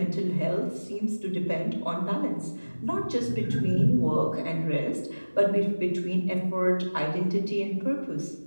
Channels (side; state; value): both; inverted; correlation -1.00